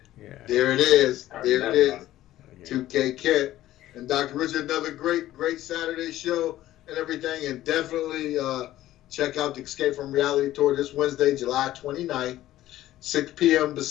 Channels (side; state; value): right; quieter; 14.4 dB